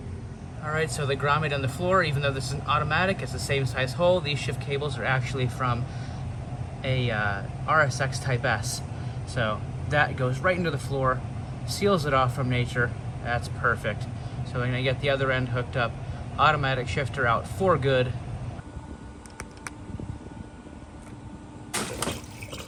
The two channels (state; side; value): identical; both; correlation 1.00